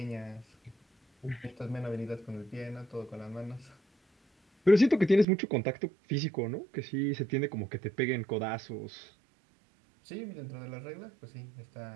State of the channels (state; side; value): drops out; left; at 5.2 s